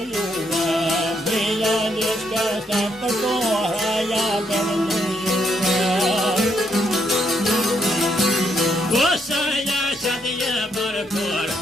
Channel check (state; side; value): normal; both; correlation 0.75